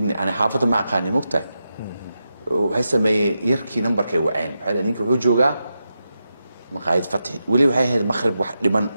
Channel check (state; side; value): inverted; both; correlation -0.88